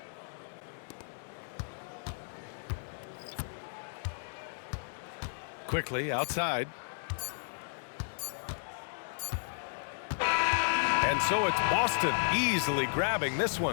Quickly outside. And so it's Boston easily grabbing this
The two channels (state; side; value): silent; right; digital silence